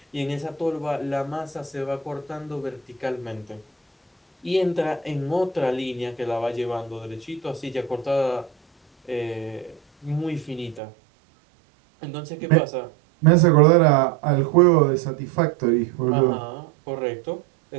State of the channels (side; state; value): left; drops out; at 10.8 s